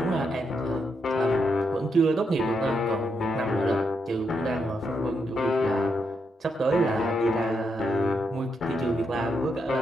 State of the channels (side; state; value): both; normal; correlation 0.80